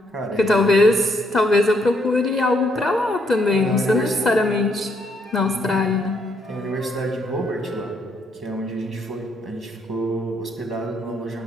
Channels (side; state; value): both; normal; correlation 0.72